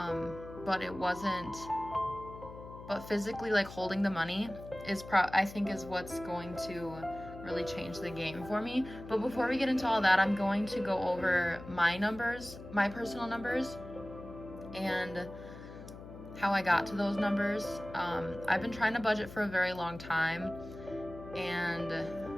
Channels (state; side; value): noise; left; hum, 14 dB below the sound